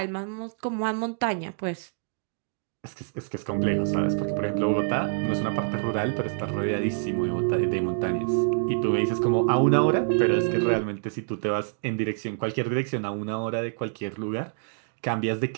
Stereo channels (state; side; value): silent; left; digital silence